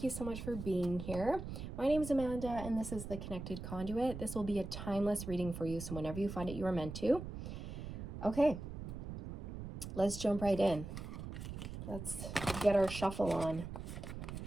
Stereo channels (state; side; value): noise; right; rumble, 8 dB below the sound